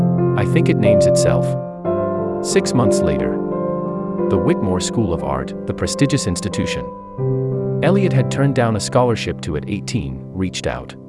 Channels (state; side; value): identical; both; correlation 1.00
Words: "I think it names itself." 6 months later, the Whitmore School of Art, the prestigious institution Elliot had turned down a scholarship to at 18, reached out.